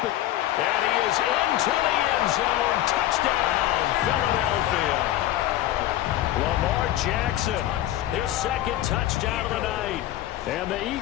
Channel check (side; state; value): right; quieter; 14.0 dB